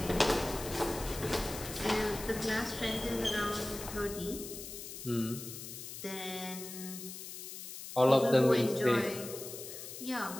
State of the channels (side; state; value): left; noise; hiss, 10 dB below the sound